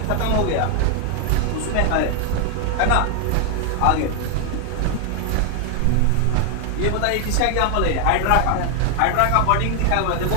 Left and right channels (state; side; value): different; both; correlation 0.00